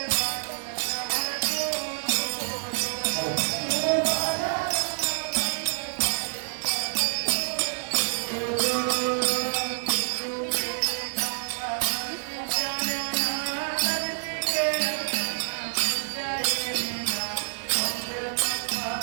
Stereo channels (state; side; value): silent; left; digital silence